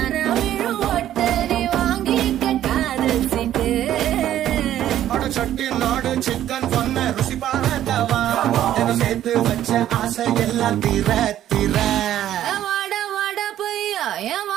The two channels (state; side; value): quieter; left; 12.0 dB